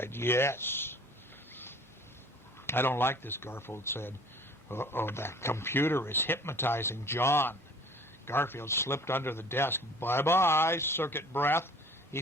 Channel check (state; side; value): normal; both; correlation 0.49